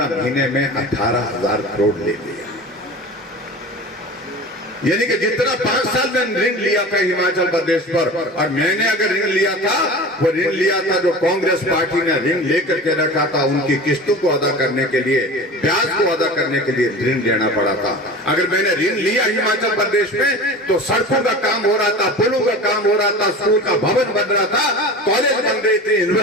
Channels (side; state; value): both; normal; correlation 0.34